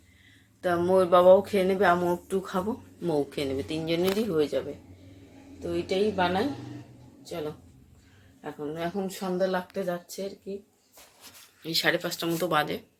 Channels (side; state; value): both; identical; correlation 1.00